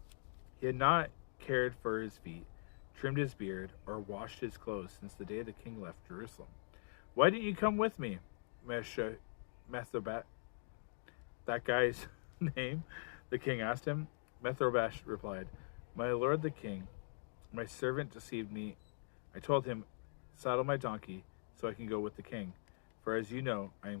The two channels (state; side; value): silent; right; digital silence